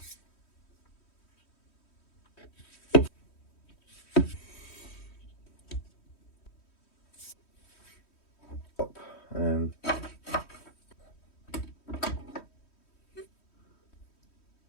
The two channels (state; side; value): late; right; 3.1 ms